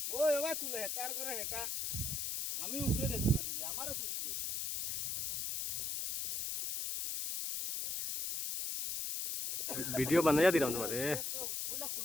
ওই বাবা তুলে হেটার করে হেটা আমি উপরে দেখো না নিবি আমারও তুলতে ভিডিও বানাইয়া দিলাম তোমারে তো ফুলা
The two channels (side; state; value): left; noise; hiss, 1 dB below the sound